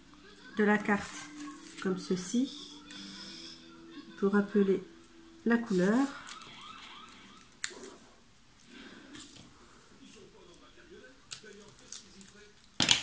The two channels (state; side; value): identical; both; correlation 1.00